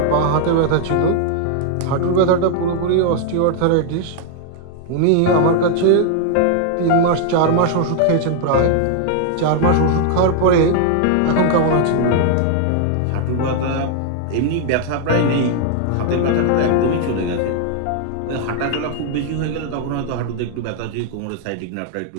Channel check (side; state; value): both; different; correlation 0.00